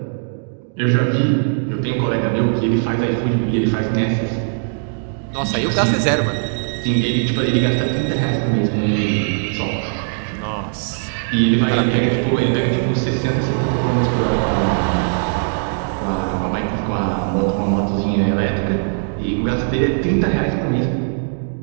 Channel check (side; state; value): left; silent; digital silence